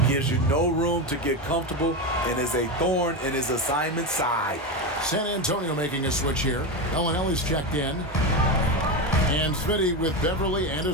Gives you no room to get comfortable and is a thorn in his assignment side. San Antonio making a switch here. Ellis checked in. And Smitty with Beverly and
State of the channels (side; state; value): both; normal; correlation 0.15